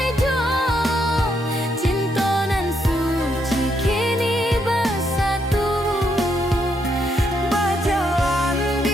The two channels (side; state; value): both; normal; correlation 0.76